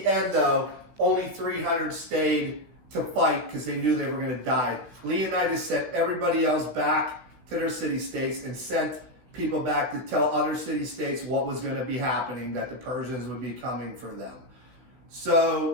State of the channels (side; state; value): left; late; 16 ms